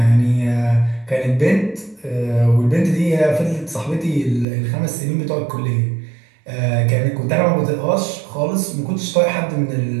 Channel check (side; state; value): left; drops out; at 4.5 s